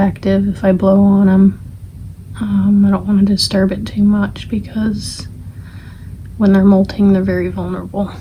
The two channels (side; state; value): both; identical; correlation 1.00